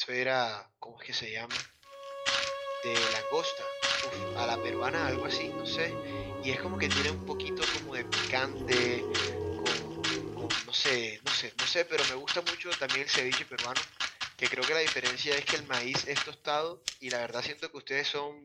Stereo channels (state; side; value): identical; both; correlation 1.00